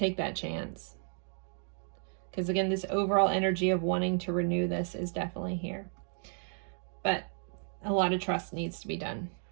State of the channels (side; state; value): left; silent; 56 dB below the other